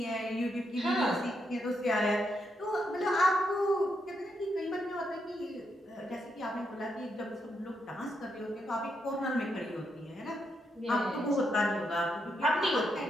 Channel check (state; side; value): normal; both; correlation 0.81